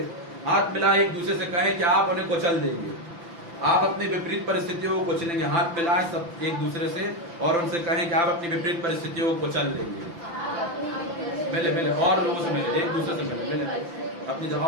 हाथ मिलाए, एक दूसरे से कहें कि आप उन्हें कुचल देंगे। आप अपनी विपरीत परिस्थितियों को कुचलेंगे। हाथ मिलाएं सब एक दूसरे से और उनसे कहें कि आप अपनी विपरीत परिस्थितियों को कुचल देंगे। मिले मिले और लोगों से मिले, एक दूसरे से मिले, अपनी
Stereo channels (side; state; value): left; late; 5.9 ms